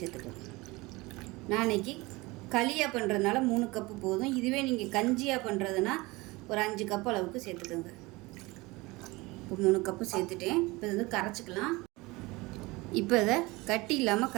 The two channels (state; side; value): quieter; left; 22.7 dB